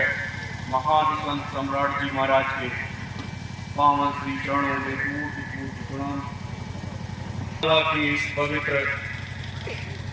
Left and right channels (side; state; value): both; identical; correlation 1.00